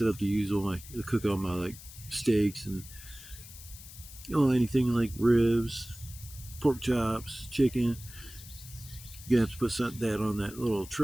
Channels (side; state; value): left; noise; hiss, 16 dB below the sound